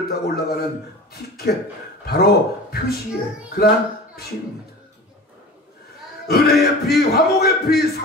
타고 올라가는 티켓, 바로 표시의 그러한 피입니다. 은혜의 피, 화목의 피,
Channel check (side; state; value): both; normal; correlation 0.36